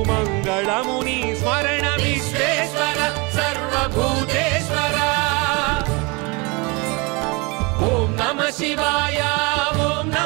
మంగళము నీ స్మరణ విశ్వేశ్వర సర్వభూతేశ్వర ఓం నమ శివాయ ఓం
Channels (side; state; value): left; quieter; 28.0 dB